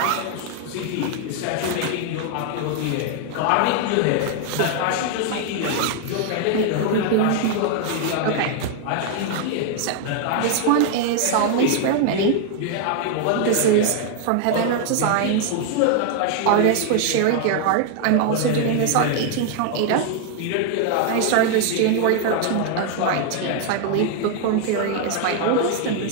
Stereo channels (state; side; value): different; both; correlation 0.00